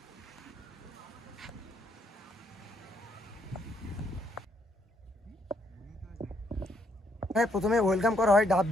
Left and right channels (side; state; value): both; normal; correlation 0.72